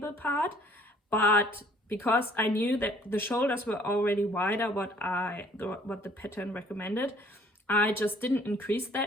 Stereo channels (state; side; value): normal; both; correlation 0.58